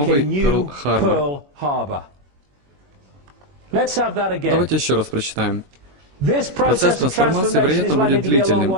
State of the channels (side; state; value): left; late; 21 ms